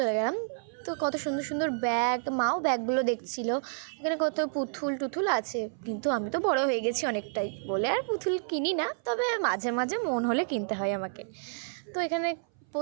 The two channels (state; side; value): silent; left; 58 dB below the other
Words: গেলাম। তো কত সুন্দর সুন্দর ব্যাগ, মাও ব্যাগগুলো দেখছিল। এখানে কত পুতুল টুতুল আছে, কিন্তু আমি তো বড় হয়ে গেছি অনেকটাই বলে আর পুতুল কিনি না, তবে মাঝে মাঝে মন হলে কিনতে হয় আমাকে। তো এখানে